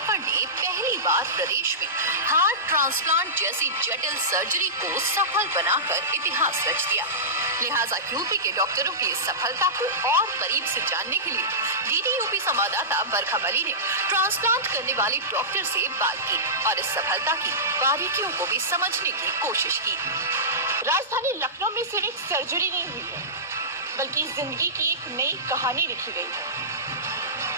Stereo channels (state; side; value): normal; both; correlation -0.18